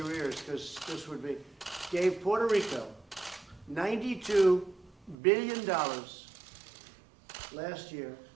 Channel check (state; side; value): drops out; left; at 5.2 s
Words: ears, because this would be, gave Puerto Rico $92 billion last year